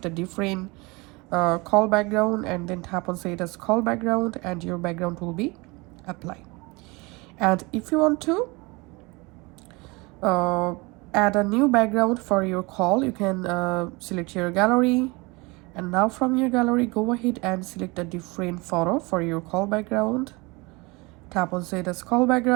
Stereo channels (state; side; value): quieter; left; 25.7 dB